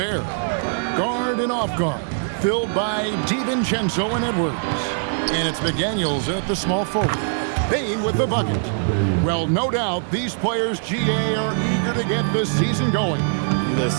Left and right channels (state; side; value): silent; left; digital silence